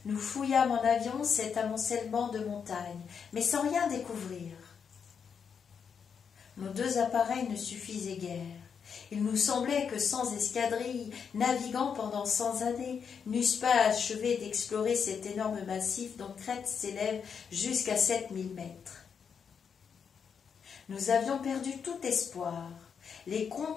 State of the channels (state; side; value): quieter; right; 6.7 dB